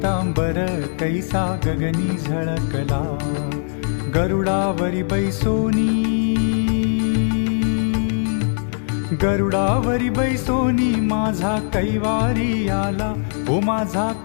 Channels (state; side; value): silent; right; digital silence